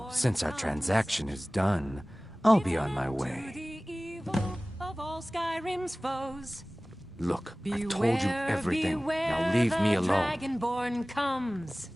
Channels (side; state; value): both; normal; correlation 0.98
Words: since our transaction is done, I'll be on my way. Of all Skyrim's foes. Look, I've told you everything. Now leave me alone. Dragonborn comes.